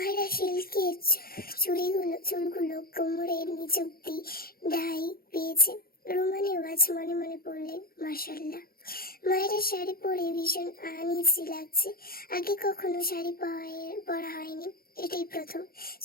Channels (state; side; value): late; right; 0.43 ms